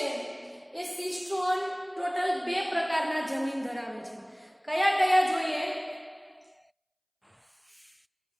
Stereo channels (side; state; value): both; identical; correlation 1.00